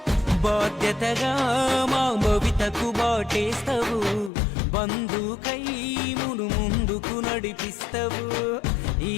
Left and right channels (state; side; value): drops out; right; at 4.3 s